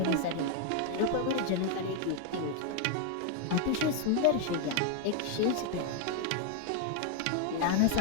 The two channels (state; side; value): different; both; correlation 0.00